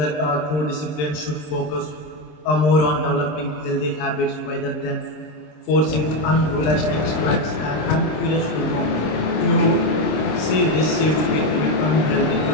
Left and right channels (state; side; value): late; right; 26 ms